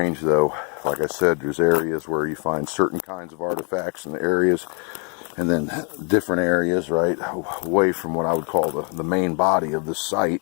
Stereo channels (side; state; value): right; quieter; 37.1 dB